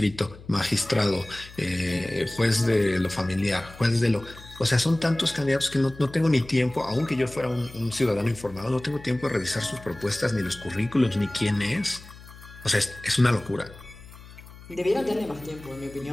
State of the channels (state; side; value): noise; left; hum, 18 dB below the sound